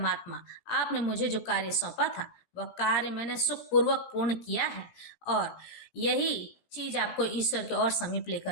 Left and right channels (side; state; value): right; late; 17 ms